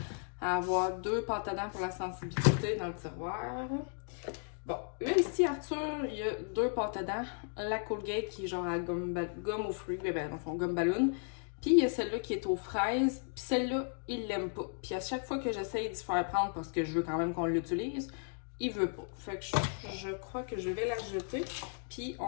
à avoir 2 pâtes à dents pour la sensibilité dans le tiroir. Bon, là ici, Arthur, il y a 2 pâtes à dents. La Colgate qui est genre à gomme aux fruits, ben dans le fond, gomme ballon. Puis il y a celle-là qui est aux fraises. Puis celle-là, il l'aime pas. Puis à chaque fois que j'essaye d'y faire prendre parce que je veux quand même qu'on l'utilise, il veut pas. Fait que je crois que je vais la jeter. Puis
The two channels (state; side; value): silent; right; 54 dB below the other